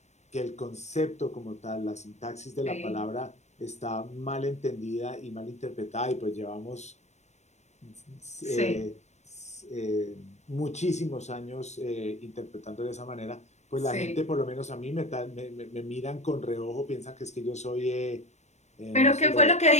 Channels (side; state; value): right; late; 0.33 ms